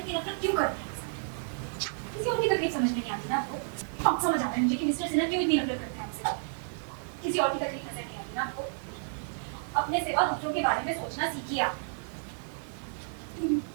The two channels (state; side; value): silent; left; 57 dB below the other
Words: की नफरत क्यों करते हैं? किसी और की तकलीफ समझ में नहीं आती ना आपको? अब समझ आ रहा है मुझे कि मिस्टर सिन्हा क्यों इतनी नफरत करते हैं हमसे। किसी और की तकलीफ नजर नहीं आती ना आपको? अपने सिवा दूसरों के बारे में सोचना सीखिए आप।